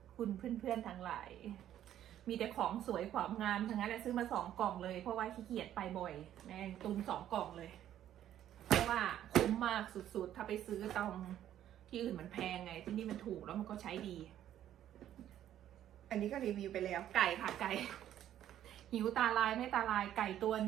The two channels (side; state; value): left; quieter; 11.4 dB